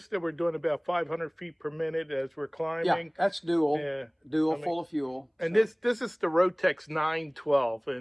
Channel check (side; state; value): both; identical; correlation 1.00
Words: that we're doing about 500 feet per minute as we're climbing. Yeah, that's dual. Yeah. Full of fuel. And this is the Rotex 912,